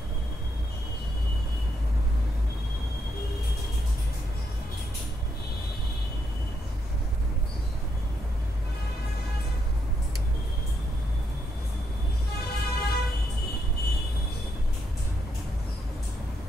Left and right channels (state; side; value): normal; both; correlation 0.78